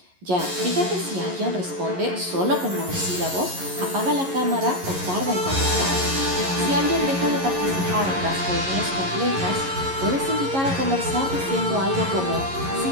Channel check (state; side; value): late; left; 11 ms